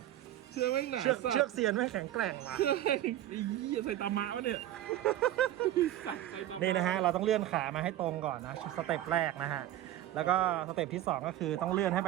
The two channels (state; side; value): quieter; left; 13.2 dB